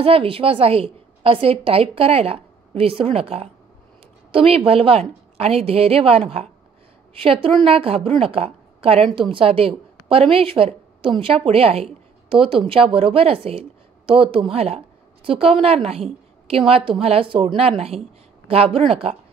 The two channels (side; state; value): left; quieter; 5.7 dB